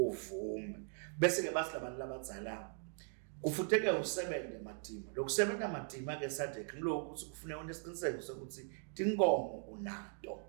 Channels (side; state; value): left; silent; 51 dB below the other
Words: bese ke bathi labantu labadzala kufuteke usebenze matima lokusebenza matima ke sadek ngiloko ukuthi kufuneka unesiqiniseko sokuthi tinkomo unato